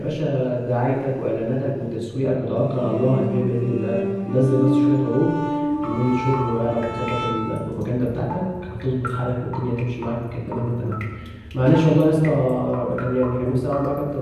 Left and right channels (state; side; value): identical; both; correlation 1.00